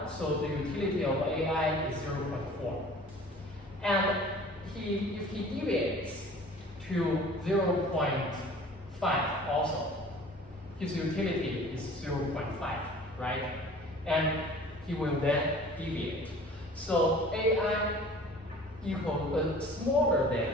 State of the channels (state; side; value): normal; both; correlation 0.46